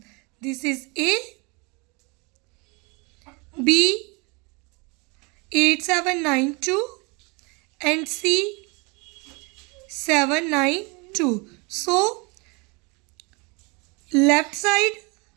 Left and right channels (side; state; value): left; quieter; 29.5 dB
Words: This is A. B 8792 and C 792. So left side